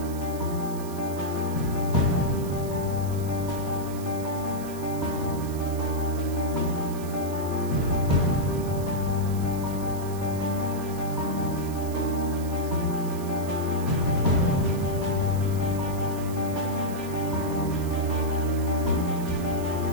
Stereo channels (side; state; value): right; noise; hiss, 16 dB below the sound